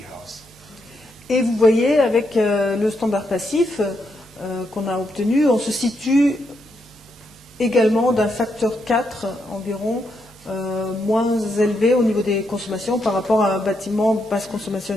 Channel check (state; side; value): normal; both; correlation 0.80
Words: Et vous voyez, avec le standard passif qu'on a obtenu, on se situe également d'un facteur 4 environ moins élevé au niveau des consommations par rapport à un bâtiment basse consommation